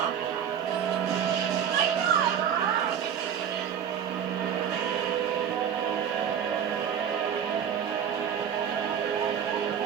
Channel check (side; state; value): left; quieter; 8.5 dB